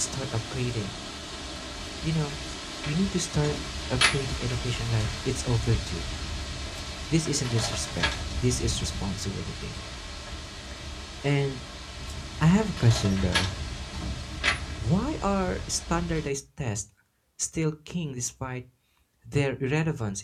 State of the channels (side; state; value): both; identical; correlation 1.00